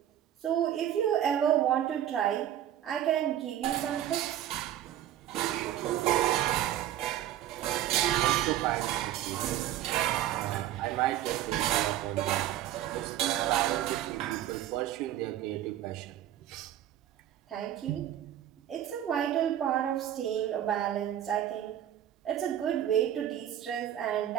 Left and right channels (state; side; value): quieter; left; 11.8 dB